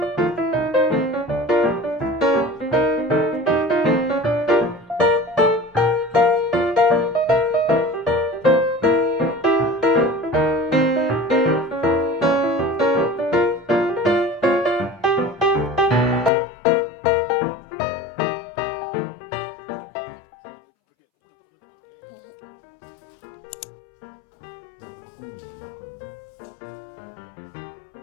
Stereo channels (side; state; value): right; drops out; at 16.3 s